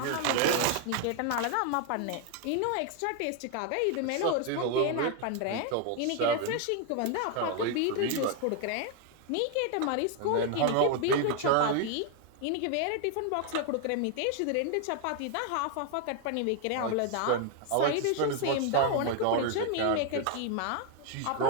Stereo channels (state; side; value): different; both; correlation 0.00